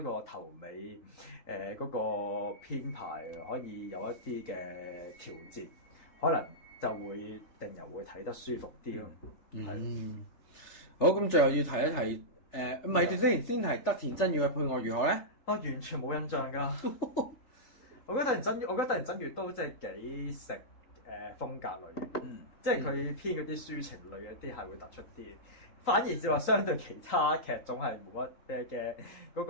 個頭尾嗰個編排可以有一啲嘅調節，可能就會令人會睇得舒服啲咯。好，咁最後要提一提。唔係，先係德田真月嘅配樂如何咧？我完全冇印象㗎。我覺得德田真月都即係幾食風格類嘅，即係佢編嗰啲抒情類嘅啲係會突出啲，反而就話相對其他劇種係冇乜嘅嗰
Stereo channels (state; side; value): late; right; 3.8 ms